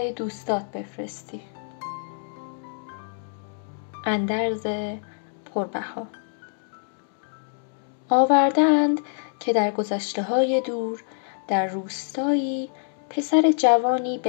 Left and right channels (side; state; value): right; silent; 57 dB below the other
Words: دوستات بفرستی. اندرز پربها. آوردند که در گذشته‌های دور در روستایی پسر جوانی